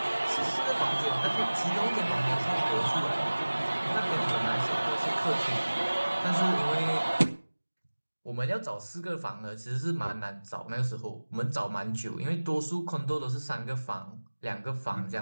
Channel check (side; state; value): both; inverted; correlation -1.00